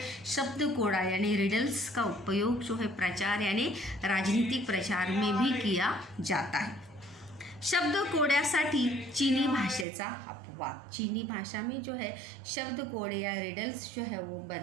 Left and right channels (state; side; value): drops out; left; at 9.9 s